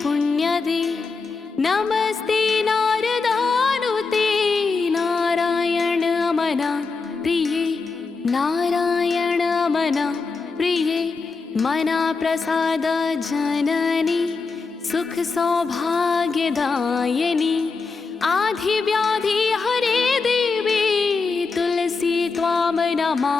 पुण्यदे नमस्ते नारदानुते नारायण अमना प्रिये नारायण अमना प्रिये मना प्रसाद जननी सुख सौभाग्यदायिनी आधि व्याधि हरे देवी तुलसी त्वां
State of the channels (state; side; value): quieter; right; 4.4 dB